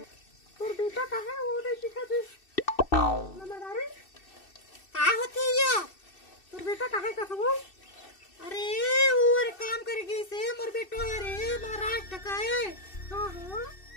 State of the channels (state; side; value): late; right; 2.6 ms